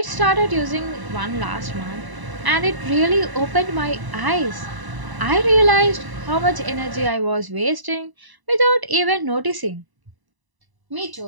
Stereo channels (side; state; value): left; late; 1.0 ms